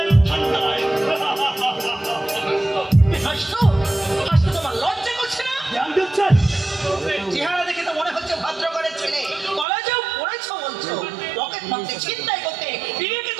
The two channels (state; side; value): drops out; left; at 9.7 s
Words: তোমার লজ্জা করছে না? চেহারা দেখে তো মনে হচ্ছে ভদ্রঘরের ছেলে, কলেজেও পড়েছো বলছো, পকেট মারতে চিন্তাই করতে বিবেকে